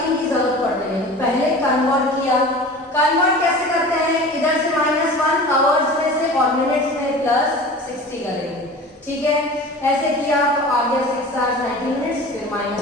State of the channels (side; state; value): both; normal; correlation 0.38